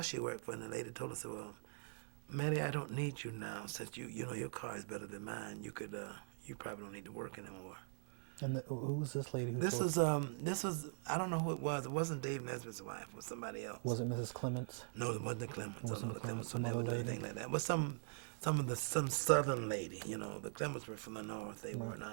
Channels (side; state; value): left; silent; digital silence